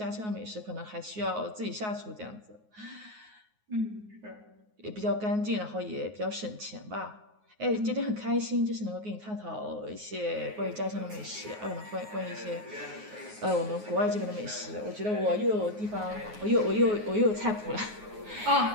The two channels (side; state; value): left; late; 9.5 ms